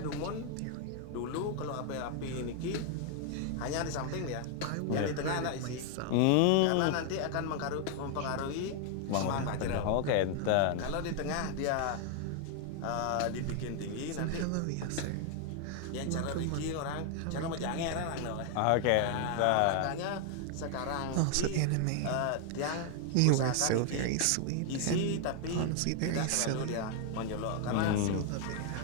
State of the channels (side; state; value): both; different; correlation 0.00